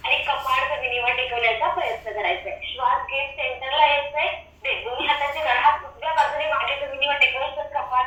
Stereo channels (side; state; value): both; identical; correlation 1.00